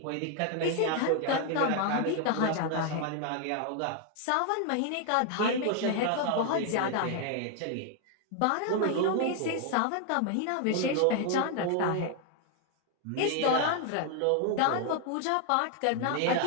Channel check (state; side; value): different; both; correlation 0.00